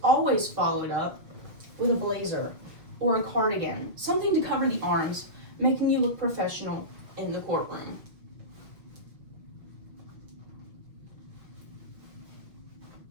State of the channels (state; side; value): late; left; 6.1 ms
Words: always followed up with a blazer or a cardigan, something to cover the arms, making you look professional in the courtroom.